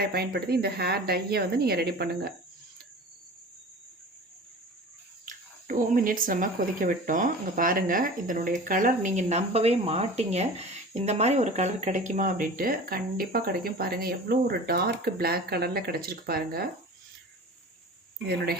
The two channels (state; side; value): normal; both; correlation 0.38